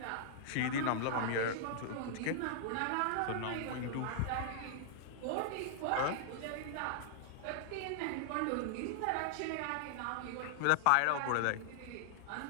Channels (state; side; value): different; both; correlation -0.01